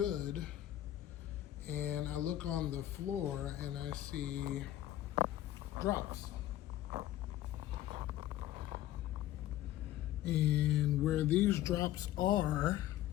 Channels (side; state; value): right; quieter; 13.6 dB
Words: And I look on the floor and I see drops. And where these drops are